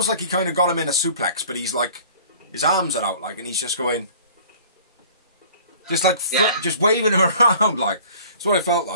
he kind of got him in a suplex, but he's like, his arms are out, like, and he's just going, just like, just waving him around, like. That's what it felt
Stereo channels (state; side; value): inverted; both; correlation -0.49